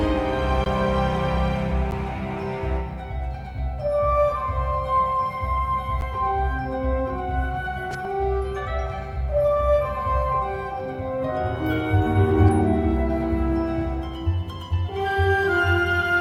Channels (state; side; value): identical; both; correlation 1.00